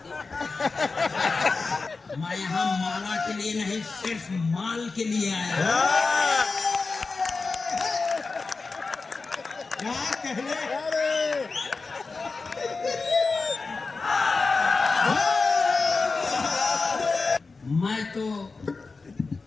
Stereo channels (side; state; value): right; quieter; 4.1 dB